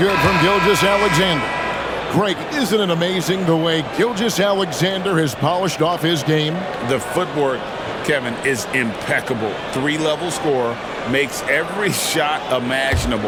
from Gilgeous-Alexander. Greg, isn't it amazing the way Gilgeous-Alexander has polished off his game? The footwork, Kevin, is impeccable. 3-level scorer, makes every shot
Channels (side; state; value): both; identical; correlation 1.00